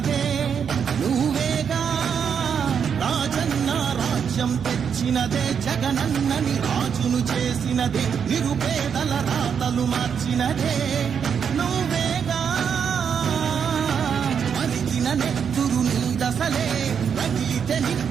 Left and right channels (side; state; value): left; quieter; 7.2 dB